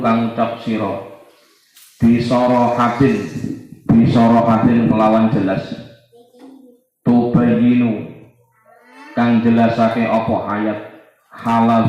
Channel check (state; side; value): identical; both; correlation 1.00